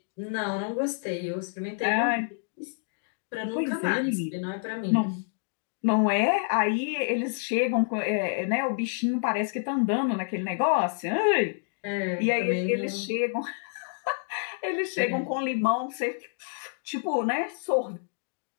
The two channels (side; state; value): right; silent; digital silence